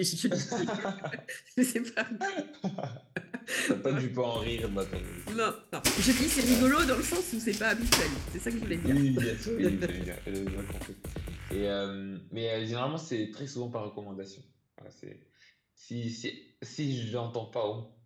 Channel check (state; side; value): identical; both; correlation 1.00